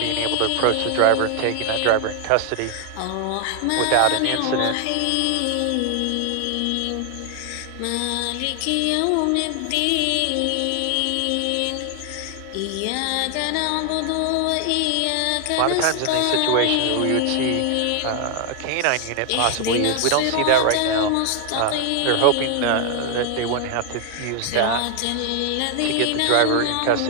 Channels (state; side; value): different; both; correlation 0.00